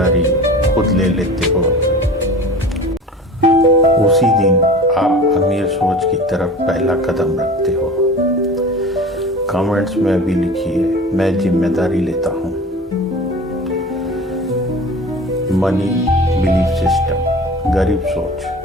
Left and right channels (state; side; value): normal; both; correlation 0.38